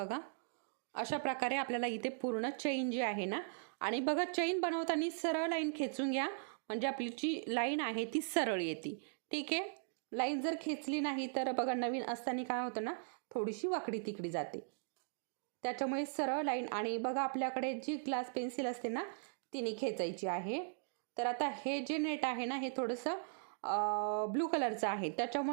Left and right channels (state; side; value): silent; left; digital silence